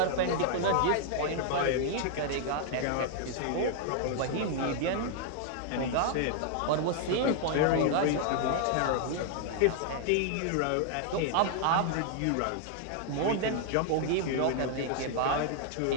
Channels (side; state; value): both; different; correlation 0.00